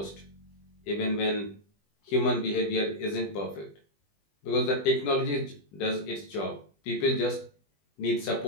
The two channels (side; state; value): right; late; 20 ms